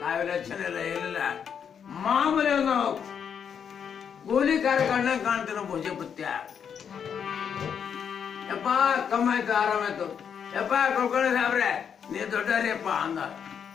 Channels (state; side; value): quieter; right; 7.6 dB